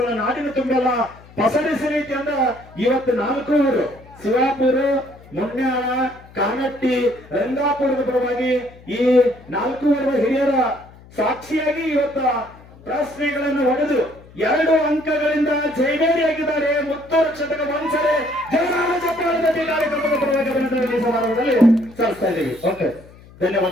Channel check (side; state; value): left; noise; hum, 22 dB below the sound